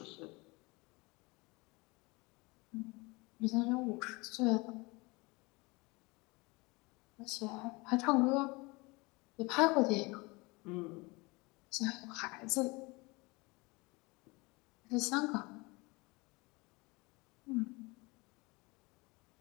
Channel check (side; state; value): right; quieter; 25.2 dB